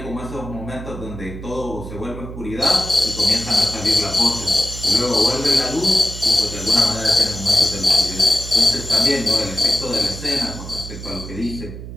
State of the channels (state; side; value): noise; right; hum, 11 dB below the sound